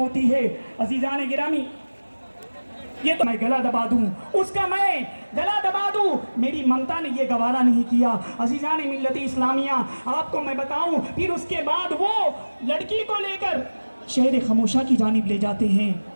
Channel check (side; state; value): both; inverted; correlation -1.00